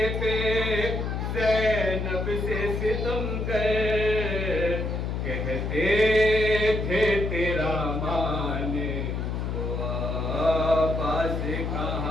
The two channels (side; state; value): left; noise; hum, 2 dB below the sound